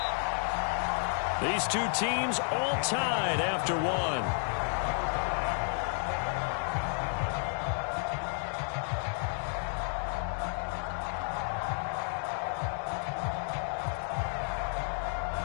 These two teams all tied after one.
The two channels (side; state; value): right; silent; 57 dB below the other